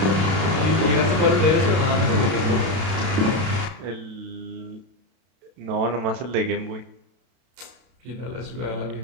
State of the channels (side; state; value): left; late; 32 ms